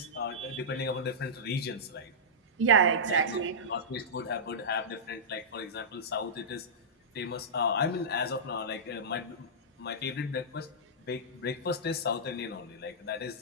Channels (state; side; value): normal; both; correlation -0.15